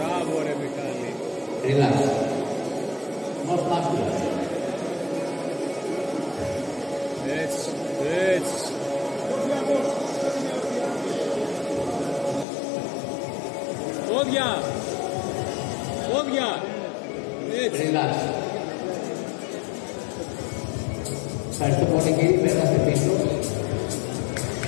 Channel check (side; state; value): right; drops out; at 12.5 s